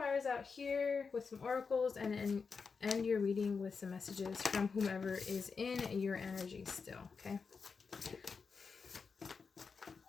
out here with some oracles, and then end your reading with some messages from whomever is in your energy still, okay?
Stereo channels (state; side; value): quieter; right; 5.2 dB